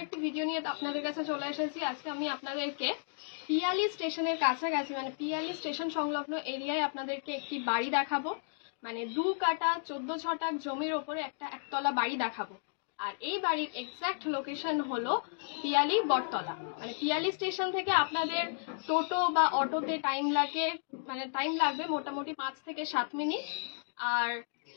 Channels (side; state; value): right; silent; digital silence